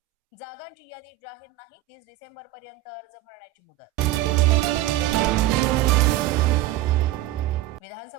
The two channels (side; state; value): left; quieter; 15.3 dB